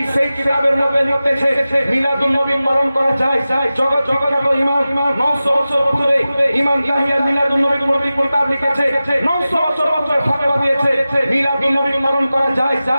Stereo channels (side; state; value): both; inverted; correlation -0.95